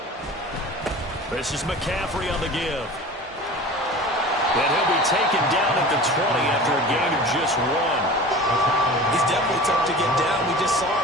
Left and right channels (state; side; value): normal; both; correlation 0.37